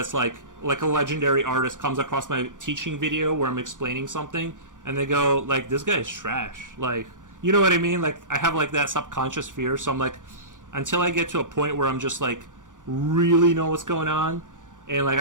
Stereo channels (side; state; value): left; late; 0.88 ms